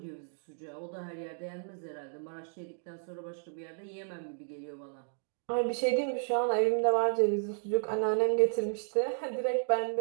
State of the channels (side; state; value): left; silent; digital silence